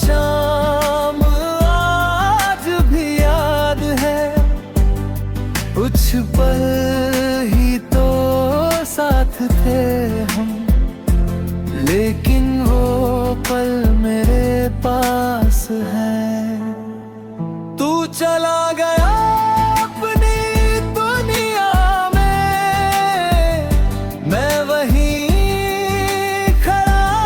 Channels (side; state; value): both; identical; correlation 1.00